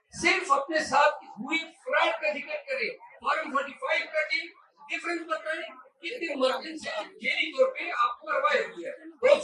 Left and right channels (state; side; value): identical; both; correlation 1.00